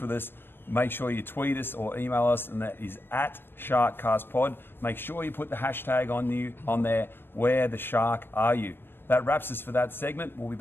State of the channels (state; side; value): late; right; 0.10 ms